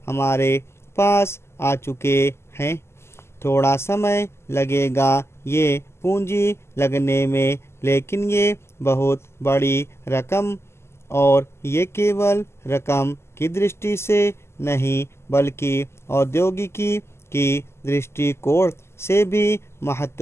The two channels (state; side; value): late; right; 0.12 ms